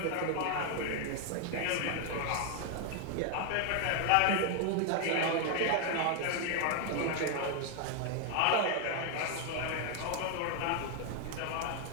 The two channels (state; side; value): different; both; correlation 0.01